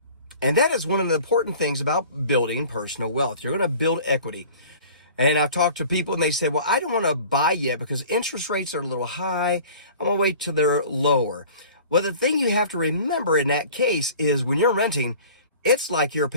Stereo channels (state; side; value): inverted; both; correlation -0.45